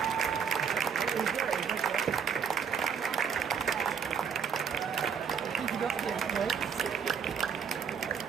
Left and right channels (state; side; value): quieter; left; 6.8 dB